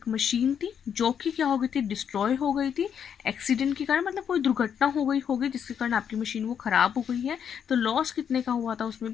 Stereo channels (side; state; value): right; quieter; 8.1 dB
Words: मशीन थी जो कि क्या हो गई थी? डिस्ट्रॉय हो गई थी एक्सीडेंट के कारण, मतलब कोई दुर्घटना हो गई होगी जिसके कारण आपकी मशीन वो खराब हो गई है। तो लॉस कितने का हुआ था? उसमें